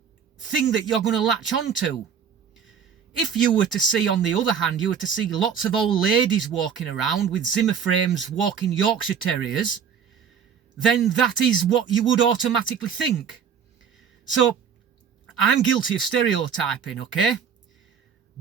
thing that you're going to latch onto. If you were to see, on the other hand, you were to see lots of old ladies walking around with Zimmer frames walking Yorkshire Terriers, then that is what you would automatically think. So I'm guilty of stereotyping, okay?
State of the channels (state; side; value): quieter; left; 7.3 dB